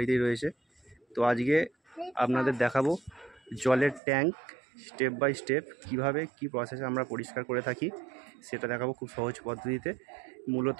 রয়েছে। তো আজকে আপনাদের দেখাবো জলের ট্যাঙ্ক স্টেপ বাই স্টেপ কীভাবে কী প্রসেসে আমরা পরিষ্কার করে থাকি সেটা দেখাবো খুব সহজ পদ্ধতিতে।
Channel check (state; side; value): drops out; left; at 4.0 s